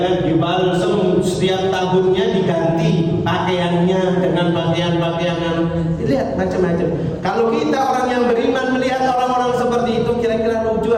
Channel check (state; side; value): identical; both; correlation 1.00